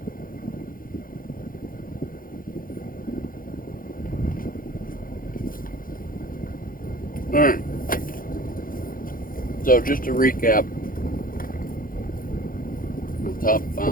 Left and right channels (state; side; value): late; right; 0.41 ms